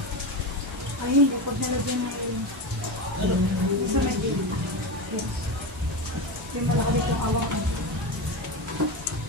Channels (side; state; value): both; normal; correlation 0.19